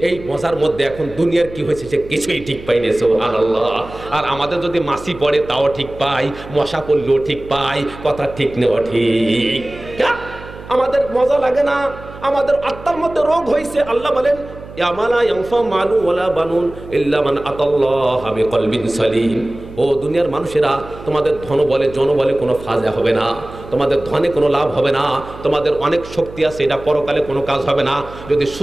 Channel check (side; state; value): right; noise; hum, 16 dB below the sound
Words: এই মজার মধ্যে এখন দুনিয়ার কি হয়েছে সে কিছুই ঠিক পাইনি। সুবহানাল্লাহ। আর আমাদের যদি মাছি পড়ে তাও ঠিক পাই, মশা পড়লেও ঠিক পাই। কথা ঠিক নেওয়া ঠিক। আমাদের মজা লাগে না, আমাদের আত্মার মধ্যে রোগ হয়েছে। আল্লাহ বলেন ইয়ামালা ইয়ানফা মালু ওয়ালা বানুন ইল্লা মান আতাল্লাহা বিকলবিন সালিম। ও দুনিয়ার মানুষেরা, তোমাদের ধন বলে জন বলে কোনো ফায়দা হবে না, তোমাদের ধনে কোনো লাভ হবে না, তোমাদের অনেক শক্তি আছে, এটা পরকালে কোনো কাজ হবে না যদি